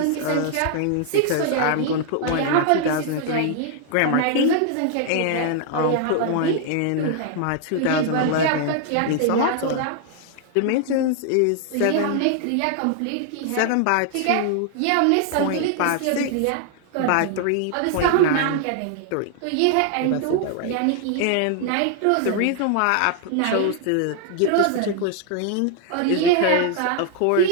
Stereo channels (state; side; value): different; both; correlation 0.00